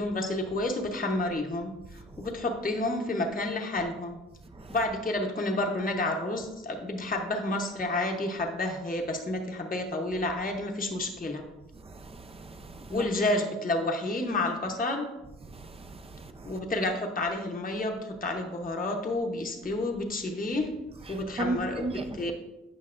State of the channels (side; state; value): both; normal; correlation 0.45